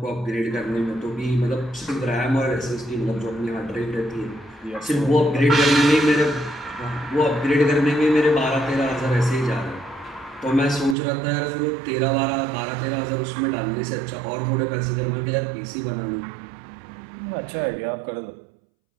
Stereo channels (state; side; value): drops out; left; at 11.0 s